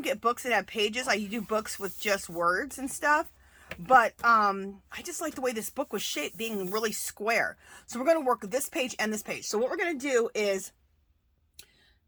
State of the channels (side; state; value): both; identical; correlation 1.00